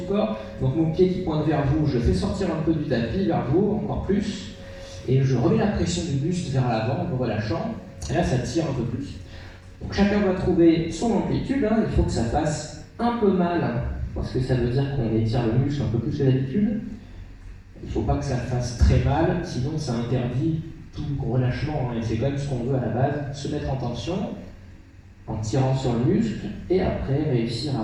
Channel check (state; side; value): identical; both; correlation 1.00